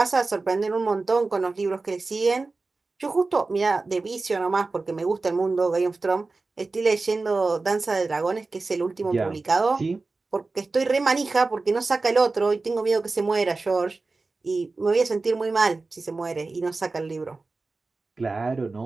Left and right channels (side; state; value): left; quieter; 3.7 dB